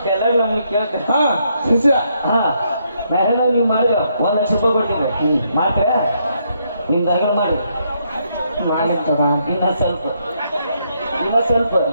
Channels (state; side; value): inverted; both; correlation -0.75